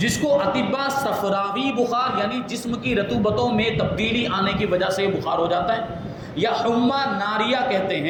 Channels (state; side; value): identical; both; correlation 1.00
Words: کو اطباء صفراوی بخار یعنی جسم کی رطوبتوں میں تبدیلی آنے کی وجہ سے بخار ہو جاتا ہے، یا حمہ ناریہ کہتے